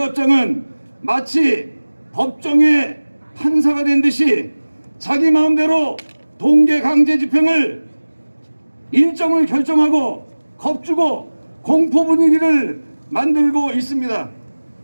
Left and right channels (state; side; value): inverted; both; correlation -1.00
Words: 마치 법정의 판사가 된 듯이 자기 마음대로 동계 강제 집행을 일정을 결정하고 겁주고 공포 분위기를 만들고 있습니다.